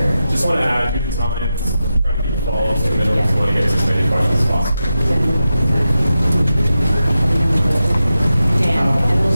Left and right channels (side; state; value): both; inverted; correlation -0.91